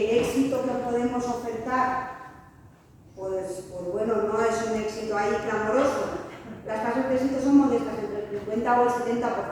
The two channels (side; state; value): both; identical; correlation 1.00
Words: el éxito que podemos ofertar, pues bueno, no es un éxito ahí clamoroso. Las tasas de éxito son modestas, entre el 50 o el 70%,